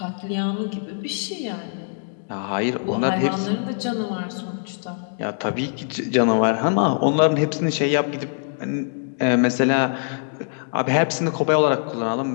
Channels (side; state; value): right; silent; digital silence